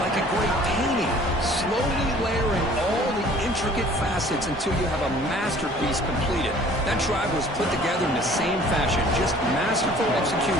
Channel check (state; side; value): normal; both; correlation 0.52